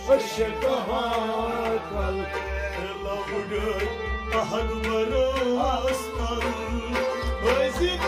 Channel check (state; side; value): identical; both; correlation 1.00